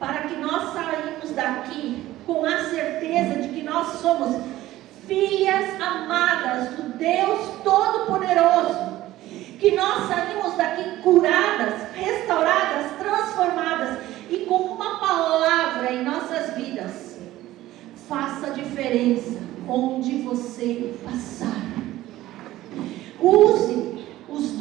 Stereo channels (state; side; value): quieter; left; 15.5 dB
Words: que nós saímos daqui com a certeza de que nós somos filhas amadas do Deus Todo-Poderoso, que nós saímos daqui curadas, restauradas, transformadas e com uma palavra em nossas vidas. Faça a diferença onde você passar. Use os